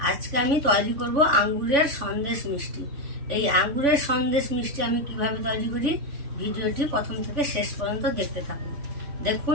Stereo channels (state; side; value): late; left; 3.5 ms